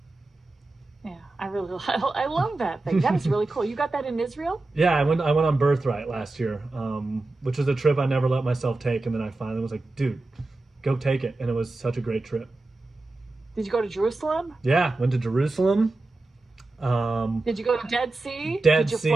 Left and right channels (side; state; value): left; quieter; 3.1 dB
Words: Yeah, I really, I love that thing. That is really cool. You got that in Israel? Yeah, I went on Birthright last year, which was a trip I never let myself take, and then I finally was like, dude, go take it, and it was such a great trip. Did you go to Jerusalem? Yeah, went to Jerusalem. Did you go to Dead Sea? Dead Did you